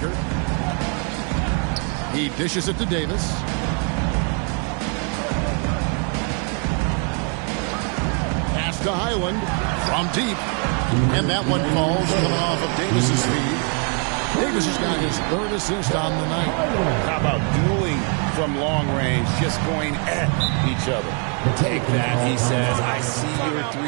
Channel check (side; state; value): left; quieter; 39.3 dB